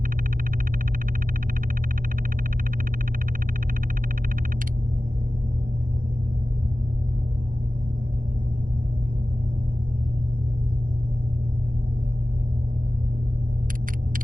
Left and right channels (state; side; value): late; left; 0.40 ms